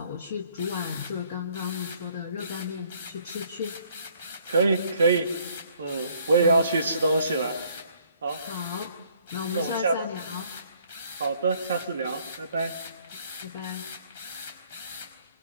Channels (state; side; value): inverted; both; correlation -0.63